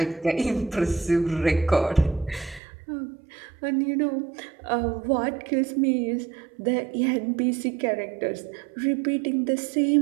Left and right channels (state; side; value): drops out; left; at 2.6 s